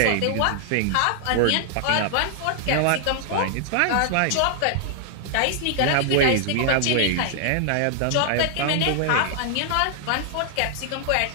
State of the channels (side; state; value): both; different; correlation 0.00